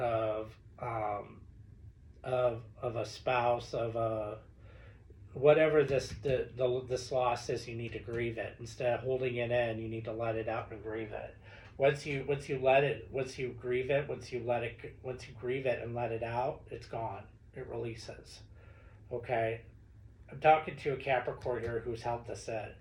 a spouse, of a whatever this loss is. You need to grieve it instead of holding it in. You need to let it out and grieve it. Once you grieve it and let it out, it's gone. It releases. Okay, I'm talking to a Capricorn here who's held this in.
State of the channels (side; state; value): both; identical; correlation 1.00